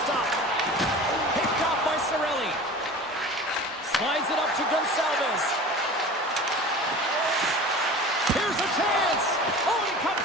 stop. Picked off by Cirelli. Slides it up to Gonsalves.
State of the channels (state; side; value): normal; both; correlation 0.38